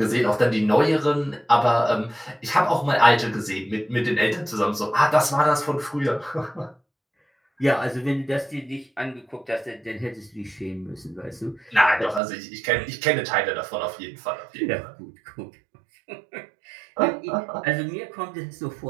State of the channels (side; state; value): left; drops out; at 12.2 s